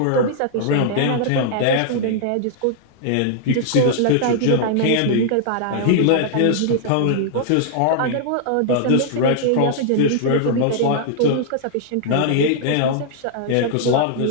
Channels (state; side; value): different; both; correlation -0.01